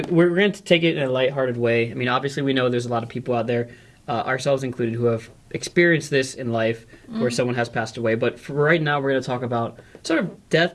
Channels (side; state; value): both; identical; correlation 1.00